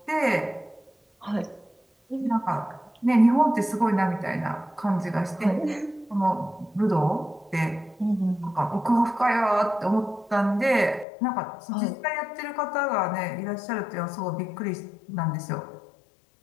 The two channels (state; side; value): drops out; right; at 11.1 s